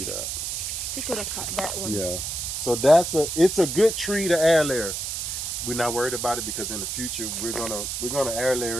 that. You could have cut that one. Yeah. So it's a good tree to air layer. We're not worried about it because in the future we're gonna air layer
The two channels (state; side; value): noise; right; hiss, 3 dB below the sound